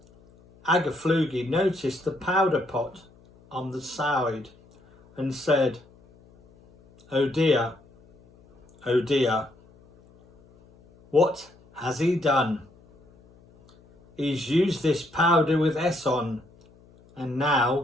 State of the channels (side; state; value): left; noise; hum, 28 dB below the sound